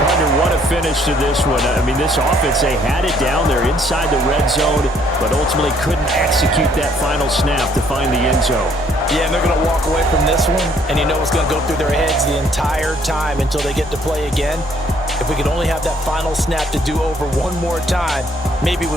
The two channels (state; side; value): normal; both; correlation 0.64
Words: What a finish to this one. I mean, this offense, they had it down there inside the red zone, but ultimately couldn't execute that final snap to find the end zone. Yeah, and they're going to walk away from this one, and you know it's going to go through their heads the entire time until they get to play again. If we could only have that final snap to do over one more time, maybe